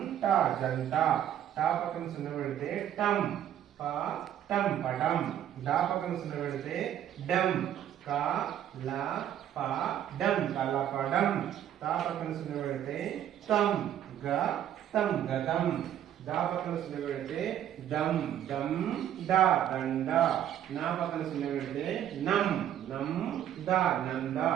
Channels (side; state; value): left; quieter; 10.8 dB